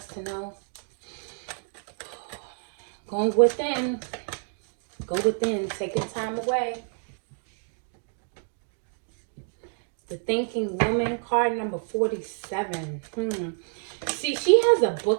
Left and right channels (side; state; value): left; silent; 59 dB below the other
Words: to know? Going within. Go within. Taking time away. The Thinking Woman, card number 47. See, she has a